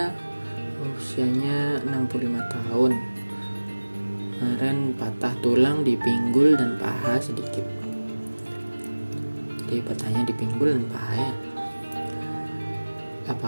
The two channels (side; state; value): both; inverted; correlation -1.00